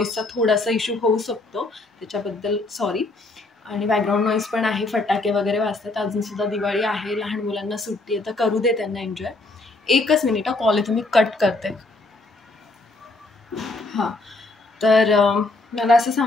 थोडासा इश्यू होऊ शकतो, त्याच्याबद्दल सॉरी. आणि बॅकग्राऊंड नॉईज पण आहे, फटाके वगैरे वाजतात. अजूनसुद्धा दिवाळी आहे, लहान मुलांना सुट्टी आहे, तर करू दे त्यांना एन्जॉय. एकच मिनिट, कॉल आहे, तुम्ही कट करते. हां, तर मला असं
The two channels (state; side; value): quieter; right; 3.0 dB